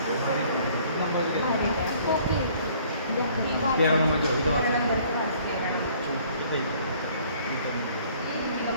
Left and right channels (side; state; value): both; inverted; correlation -0.57